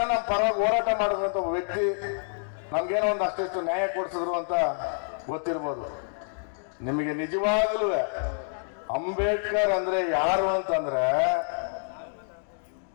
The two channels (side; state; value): right; silent; digital silence